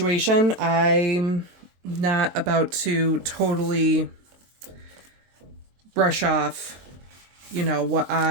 I'm not about to totally brush off, what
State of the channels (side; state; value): left; late; 22 ms